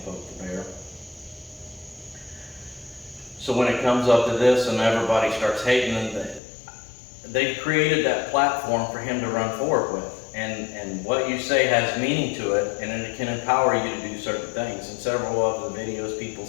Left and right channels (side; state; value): right; drops out; at 6.4 s